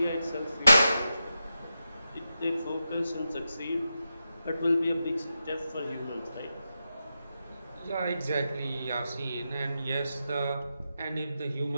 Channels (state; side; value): inverted; both; correlation -0.88